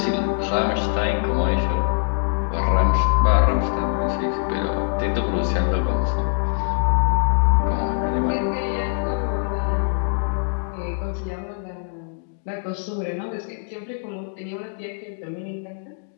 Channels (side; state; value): right; silent; digital silence